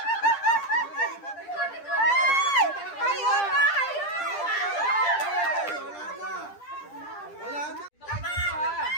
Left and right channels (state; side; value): late; right; 10 ms